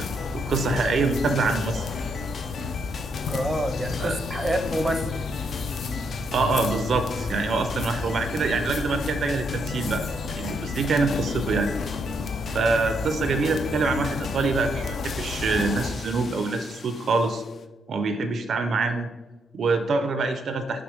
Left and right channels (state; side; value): normal; both; correlation 0.76